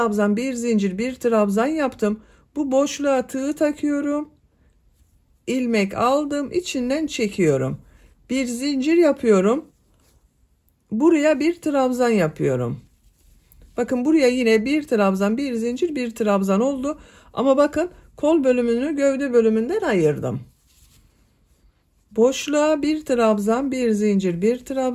bir zincir, bir trabzan yaptım. Bu boşluğa tığ takıyorum. İlmek aldım, içinden çekiyorum. Bir zincir yapıyorum. Buraya bir trabzan yapıyorum. Bakın buraya yine bir trabzan, bir zincir, bir trabzan oldu. Ama bakın kol bölümünü gövde bölümünden ayırdım. Boşluğa bir trabzan, bir zincir, bir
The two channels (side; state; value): both; identical; correlation 1.00